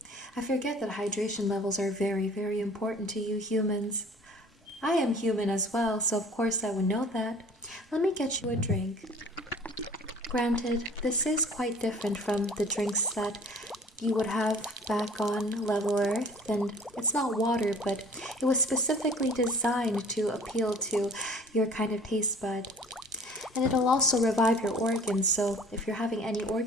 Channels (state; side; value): normal; both; correlation 0.49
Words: I forget that hydration levels are very, very important to you humans. I am human as well, so of course I would know that. Let me get you a drink. Granted, this is quite different from the drinks that you would have back on level Earth, and it's not water, but it was specifically designed to appeal to your kind of taste bud. And it'll also revive your organs, so if you're having any